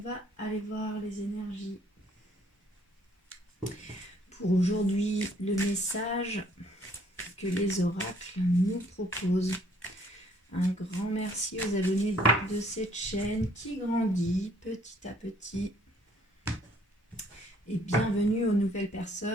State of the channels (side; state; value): both; normal; correlation 0.62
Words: aller voir les énergies. Pour aujourd'hui, le message que les oracles nous proposent. Un grand merci aux abonnés de cette chaîne qui grandit petit à petit. Et bienvenue aux nouvelles